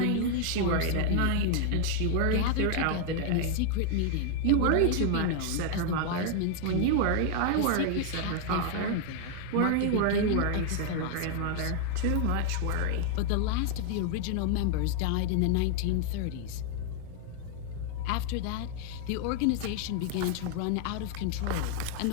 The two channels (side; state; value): both; different; correlation 0.00